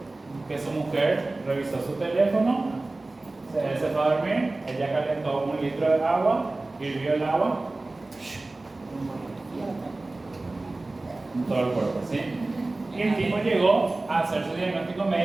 que su mujer revisó su teléfono, él se fue a dormir, ella calentó 1 litro de agua, hirvió el agua en todo el cuerpo, ¿sí? Y el tipo llegó a hacer su diagnóstico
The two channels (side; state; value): left; quieter; 3.0 dB